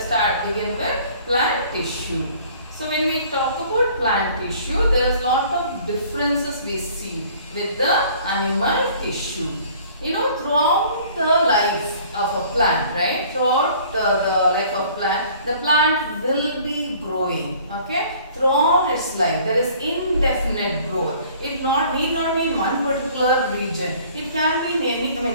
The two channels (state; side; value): inverted; both; correlation -0.53